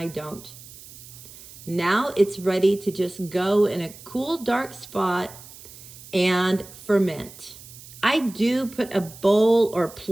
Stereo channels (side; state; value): right; noise; hiss, 18 dB below the sound